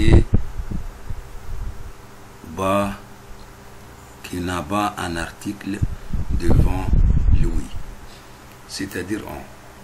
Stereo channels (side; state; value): both; identical; correlation 1.00